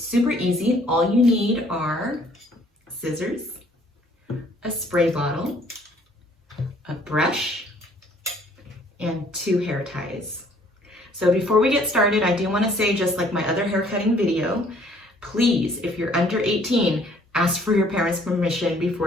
super easy. All you need are scissors, a spray bottle, a brush, and 2 hair ties. So before we get started, I do want to say, just like my other hair cutting video, please, if you're under 18, ask for your parents' permission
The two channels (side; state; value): both; normal; correlation 0.60